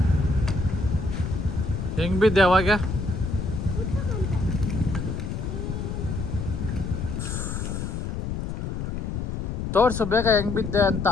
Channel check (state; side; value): noise; left; rumble, 4 dB below the sound